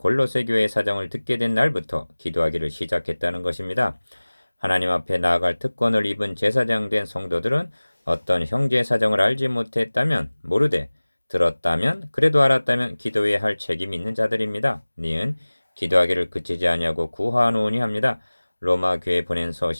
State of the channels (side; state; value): both; inverted; correlation -1.00